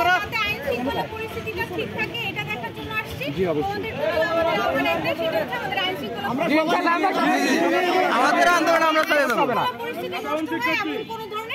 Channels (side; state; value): both; identical; correlation 1.00